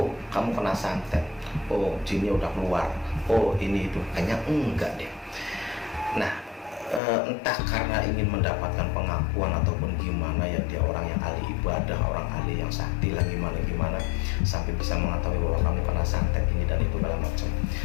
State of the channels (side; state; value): right; drops out; at 7.0 s